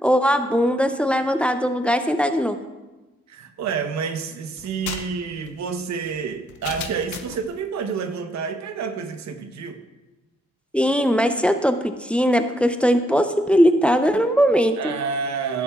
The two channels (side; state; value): both; normal; correlation 0.74